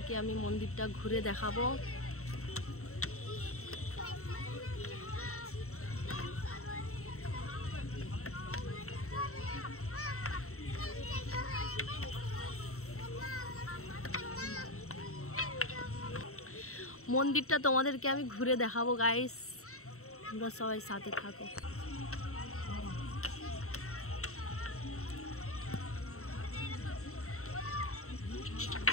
আমি মন্দিরটা ঘুরে দেখাবো। মন্দিরটা তোমাদেরকে আমি ঘুরে দেখাবো। গাইস তোমরা সবাই সাথে থাকো।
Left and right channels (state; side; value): late; right; 0.64 ms